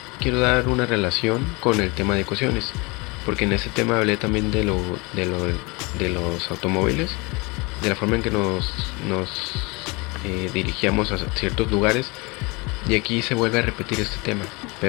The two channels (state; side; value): quieter; right; 26.8 dB